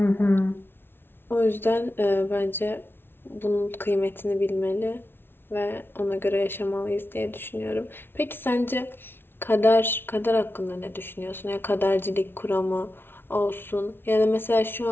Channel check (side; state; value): right; late; 0.11 ms